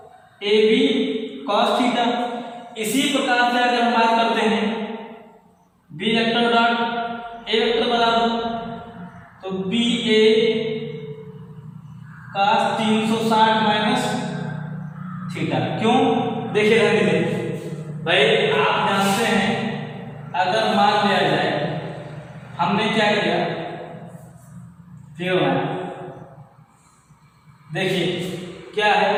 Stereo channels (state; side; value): identical; both; correlation 1.00